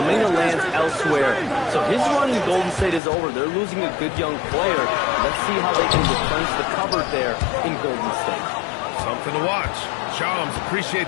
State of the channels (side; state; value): right; drops out; at 3.0 s